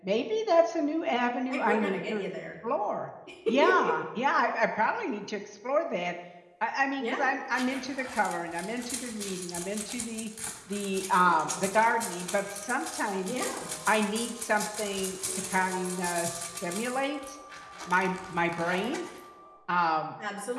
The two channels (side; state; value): both; identical; correlation 1.00